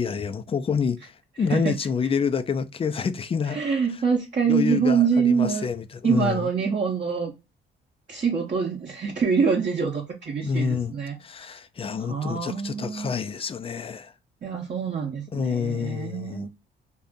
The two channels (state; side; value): normal; both; correlation 0.58